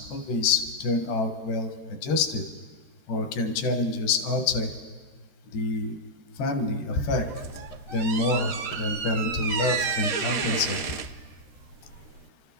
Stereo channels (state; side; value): late; right; 13 ms